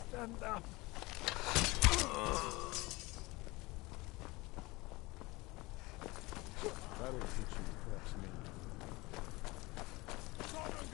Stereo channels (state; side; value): quieter; right; 22.6 dB